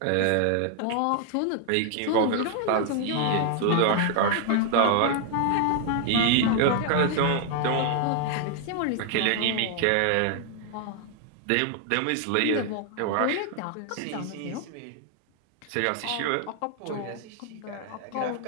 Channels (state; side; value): different; both; correlation 0.00